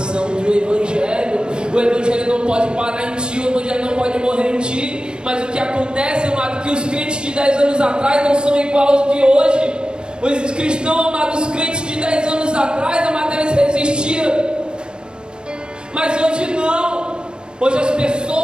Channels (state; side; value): late; left; 0.049 ms